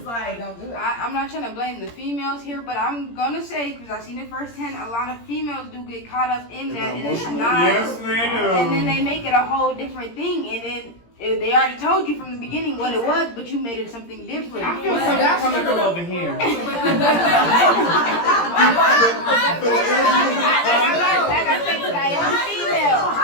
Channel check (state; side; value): late; right; 17 ms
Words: like. Don't do it. I'm not trying to blame the females here, but I'm gonna say, because I've seen it firsthand, a lot of females do get caught up in that, and it's not. Yes, they do. And then they make it a whole different thing, and then they already told you from the beginning what it was, but you made it something different. I feel something coming from over here. Like I said, 'cause I am female.